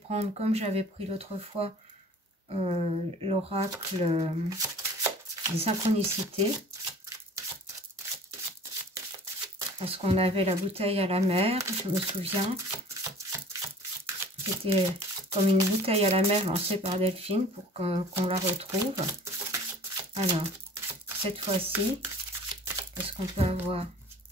comme j'avais pris l'autre fois, l'oracle des synchronicités. Parce qu'on avait la bouteille à la mer, je me souviens. C'était comme une bouteille à la mer lancée par Delphine pour qu'on la retrouve. Alors, cette fois-ci, qu'est-ce qu'on peut avoir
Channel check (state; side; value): normal; both; correlation 0.47